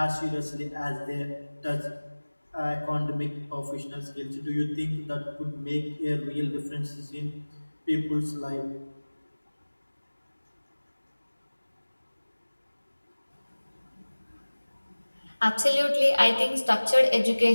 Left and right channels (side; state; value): both; inverted; correlation -1.00